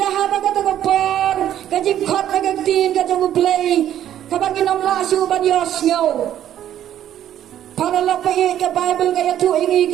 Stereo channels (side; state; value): left; quieter; 11.2 dB